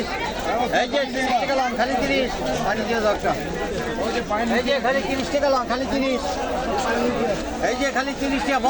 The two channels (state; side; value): identical; both; correlation 1.00